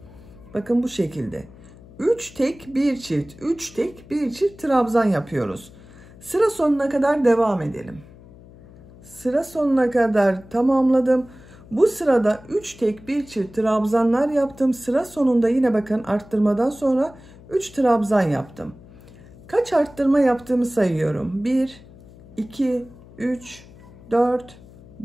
Bakın bu şekilde. 3 tek bir çift, 3 tek bir çift trabzan yapıyoruz. Sıra sonuna kadar devam edelim. Sıra sonuna kadar tamamladım. Bu sırada 3 tek bir çift trabzanlar yaptım. Sıra sonunda yine bakın arttırmadan sonra 3 trabzan yaptım. Kaç arttırma yaptığımı sayıyorum. 1, 2, 3, 4,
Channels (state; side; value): noise; left; hum, 21 dB below the sound